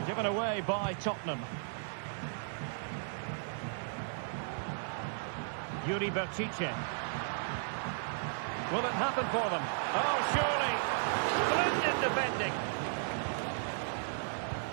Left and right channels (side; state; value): left; silent; digital silence